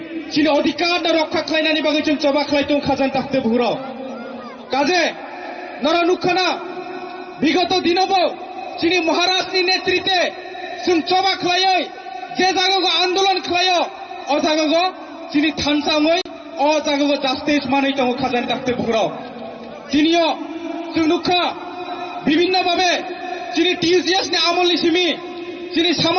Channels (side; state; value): both; identical; correlation 1.00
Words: चिनि अधिकार रक्षा खालायनायनि बागै जों जबा खालायदों खाजान ताखते बुहुराव काजे नरा नुखाना बिगत दिनावबो चिनि महाराजनि नेतृत्वे जों जबा खालायै जे जायगायाव आन्दोलन खालायो अ जायगायाव चिनि थानसाङै अ जायगायाव जास्टिस मानै दङ खाजान ताखते बुहुराव दिनियो जों नुखा বিভিন্ন ভাবে চিনি TCS नि आमोलनि सिमि चिनि